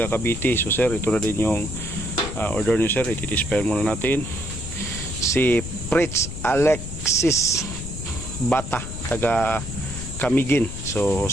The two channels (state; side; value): noise; left; rumble, 8 dB below the sound